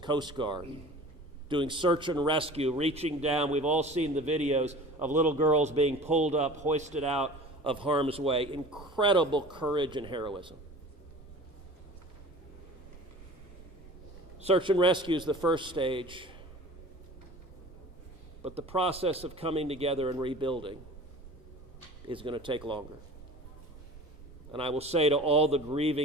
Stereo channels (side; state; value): both; normal; correlation 0.41